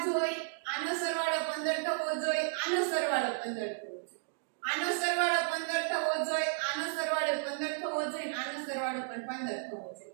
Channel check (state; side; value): silent; left; digital silence